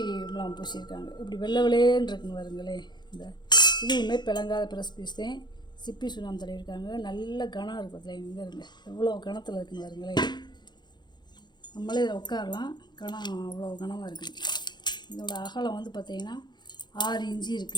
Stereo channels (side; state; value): right; late; 0.21 ms